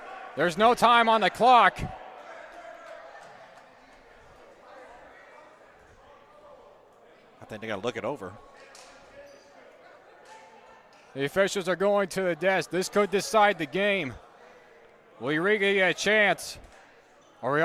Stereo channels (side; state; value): both; identical; correlation 1.00